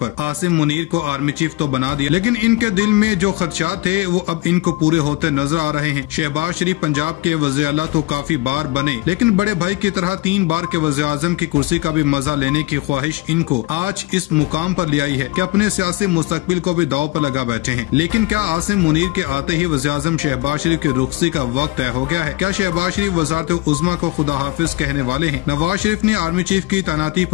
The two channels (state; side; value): quieter; right; 20.5 dB